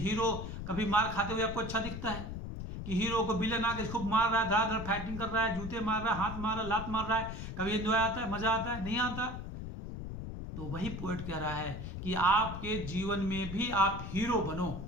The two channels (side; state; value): left; noise; rumble, 7 dB below the sound